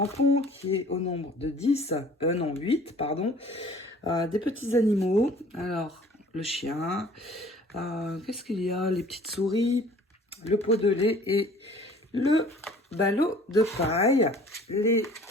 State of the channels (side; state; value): both; normal; correlation 0.51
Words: qui est au nombre de 8, pardon, des petits animaux. Alors, le chien, qu'est-ce qu'il y a? Les petites souris, le pot de lait et le ballot de paille. Les